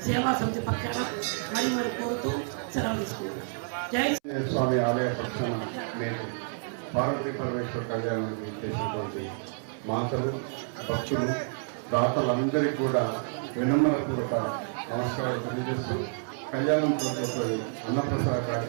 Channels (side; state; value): left; silent; 58 dB below the other